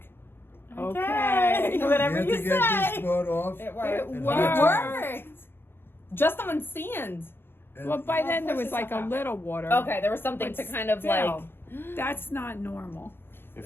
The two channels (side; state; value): right; late; 0.10 ms